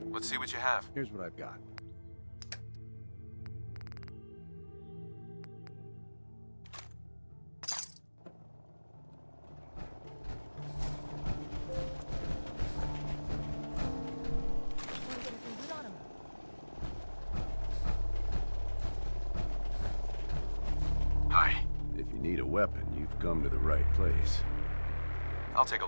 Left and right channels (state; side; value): inverted; both; correlation -1.00